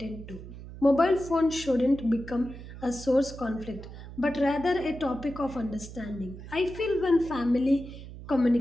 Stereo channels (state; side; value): noise; right; hum, 13 dB below the sound